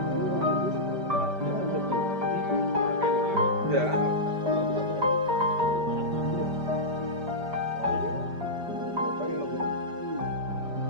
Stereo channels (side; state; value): left; late; 5.0 ms